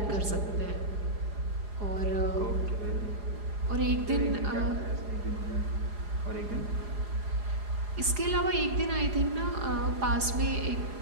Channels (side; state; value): left; late; 4.8 ms